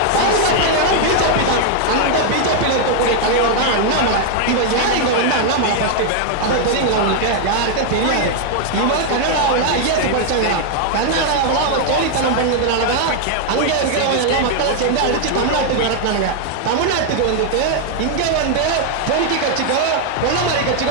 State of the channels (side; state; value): both; different; correlation 0.00